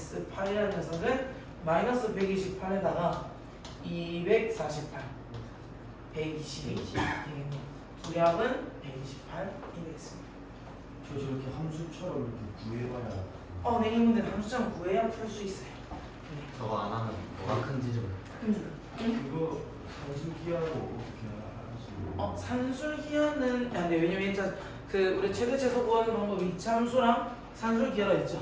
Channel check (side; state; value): both; identical; correlation 1.00